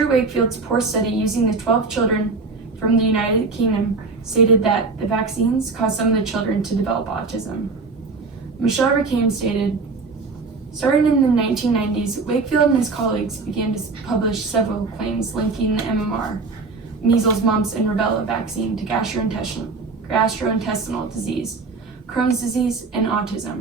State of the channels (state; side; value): quieter; left; 4.1 dB